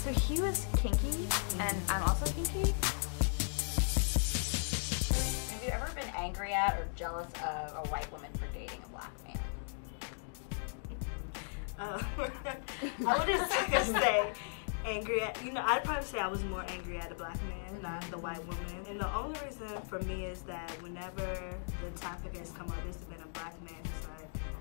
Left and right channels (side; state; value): right; silent; digital silence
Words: he was kinky, and I'm also kinky. Have you ever been angry at or jealous of a white woman for dating a black man? I wouldn't say angry at, I'd probably say I was more angry at a black man, not the white woman. And the only reason for me is that whenever the topic has come up, it's been a black man who's like,